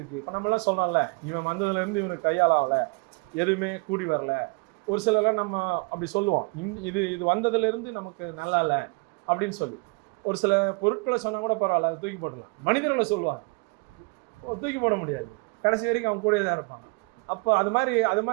இப்போ நம்மளாம் சொல்கிறோம்ல, இவன் வந்ததுலேருந்து இவனுக்கு கையால் ஆகலை, எதுவுமே கூடி வரல. ஒரு சிலர்லாம் நம்ம அப்படி சொல்லுவோம், இது வந்ததுலேருந்து நமக்கு நல்லா இல்லை அப்படின்னு சொல்லி. ஒரு சில பொருட்களை சொன்னால் கூட பரவாயில்ல, அதை தூக்கி போடலாம். மனிதர்களை சொல்லுவாங்க, தூக்கி போட முடியாது, கடைசி வரைக்கும் அவங்க கூடயே தான் இருப்பாங்க. அப்போ அது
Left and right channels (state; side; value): quieter; left; 31.9 dB